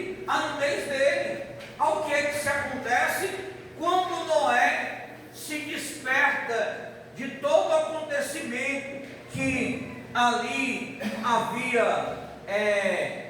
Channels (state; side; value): identical; both; correlation 1.00